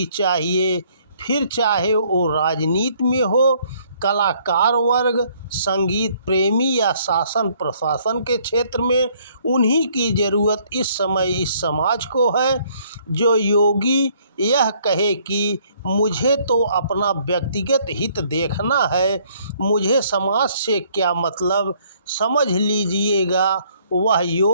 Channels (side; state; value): both; inverted; correlation -0.64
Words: चाहिए, फिर चाहे वो राजनीति में हो, कलाकार वर्ग, संगीत प्रेमी या शासन प्रशासन के क्षेत्र में। उन्हीं की ज़रूरत इस समय इस समाज को है। जो योगी यह कहे कि मुझे तो अपना व्यक्तिगत हित देखना है, मुझे समाज से क्या मतलब, समझ लीजिएगा वह